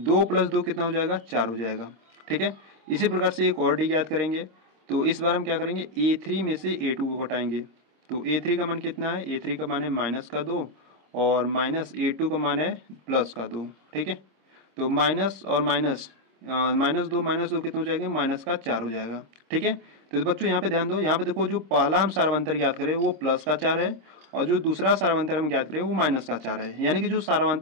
+ 2 कितना हो जाएगा, 4 हो जाएगा। ठीक है, इसी प्रकार से एक और डी ज्ञात करेंगे। तो इस बार हम क्या करेंगे, A3 में से A2 को घटाएंगे। तो A3 का मान कितना है, A3 का मान है -2 और -A2 का मान है +2। ठीक है, तो माइनस और माइनस, -2 कितना हो जाएगा, -4 हो जाएगा। ठीक है, तो बच्चों यहाँ पे ध्यान दो, यहाँ पे देखो जो पहला हम सार्वंतर ज्ञात करें वो +4 है और जो दूसरा सार्वंतर हम ज्ञात करें वो -4 है, यानी कि जो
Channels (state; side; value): late; left; 26 ms